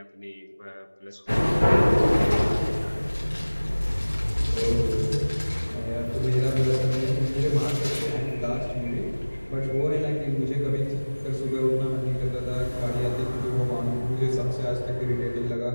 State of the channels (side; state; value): both; inverted; correlation -1.00